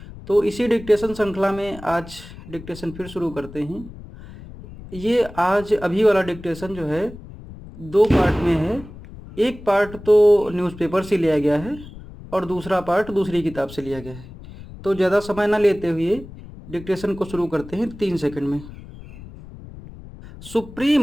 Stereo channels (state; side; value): noise; left; rumble, 16 dB below the sound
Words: तो इसी डिक्टेशन श्रृंखला में आज डिक्टेशन फिर शुरू करते हैं। ये आज अभी वाला डिक्टेशन जो है 2 पार्ट में है। एक पार्ट तो न्यूज़पेपर से लिया गया है और दूसरा पार्ट दूसरी किताब से लिया गया है। तो ज़्यादा समय ना लेते हुए डिक्टेशन को शुरू करते हैं 3 सेकंड में।